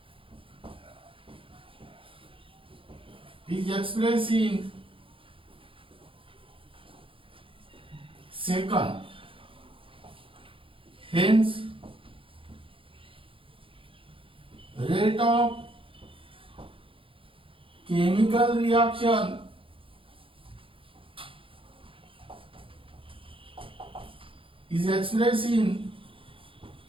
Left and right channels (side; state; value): left; late; 0.26 ms